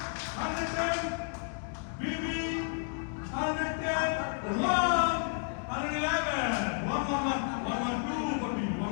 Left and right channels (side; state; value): right; silent; 56 dB below the other